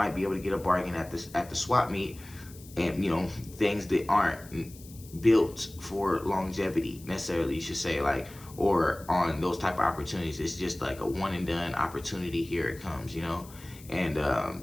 be able to get a bargain at the swap meet, and things that aren't built for longevity necessarily. You should say, like, or on those type of opportunities. It's just like a one and done opportunity. Here it comes. And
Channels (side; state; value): left; noise; hiss, 20 dB below the sound